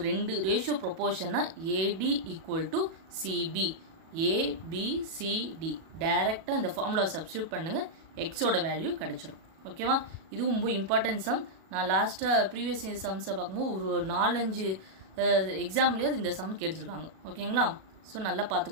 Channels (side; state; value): left; late; 37 ms